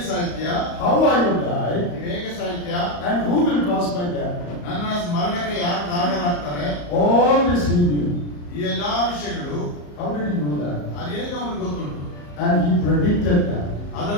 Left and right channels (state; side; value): late; right; 34 ms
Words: ಸಾಯ್ತೀಯಾ? How I will die? ನೀವು ಹೇಗೆ ಸಾಯ್ತೀಯಾ? And who will cause my death? ನನ್ನ ಮರಣಕ್ಕೆ ಯಾರು ಕಾರಣರಾಗ್ತಾರೆ? All this he knew. ಈ ಎಲ್ಲಾ ವಿಷಯಗಳು How did he know that? ಅದು ಹೇಗೆ ಅವನಿಗೆ ಗೊತ್ತುಂಟು? And he predicted that.